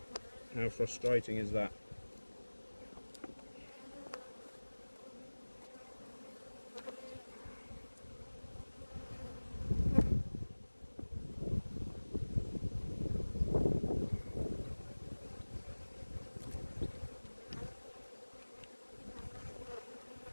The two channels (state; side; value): inverted; both; correlation -1.00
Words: How frustrating is that?